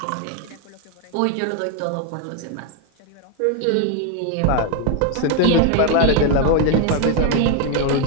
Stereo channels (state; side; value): different; both; correlation 0.01